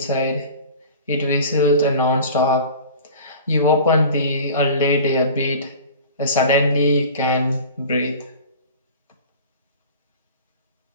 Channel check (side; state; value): both; inverted; correlation -0.39